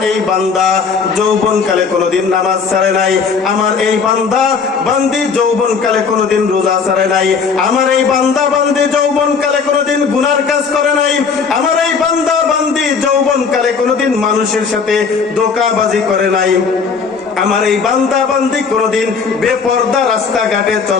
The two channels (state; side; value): quieter; right; 5.5 dB